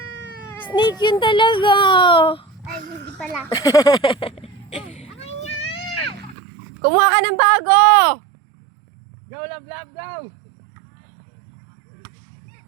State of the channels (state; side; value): drops out; left; at 6.4 s